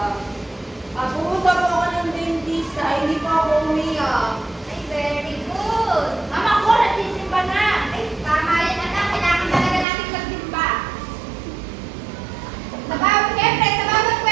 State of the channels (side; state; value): left; drops out; at 9.9 s